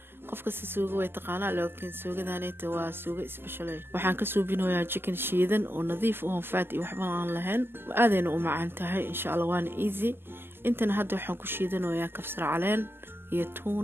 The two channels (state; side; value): late; left; 0.11 ms